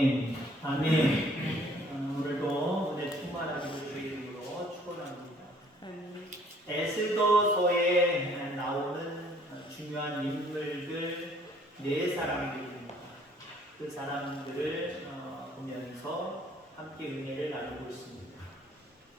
아멘. 아멘. 오늘도 은혜 충만하기를 주의 이름으로 축원합니다. 에스더서에 나오는 중요한 인물들 네 사람들입니다. 그 사람들을 보면서 함께 은혜를 나누고 있습니다.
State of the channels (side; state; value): both; normal; correlation 0.59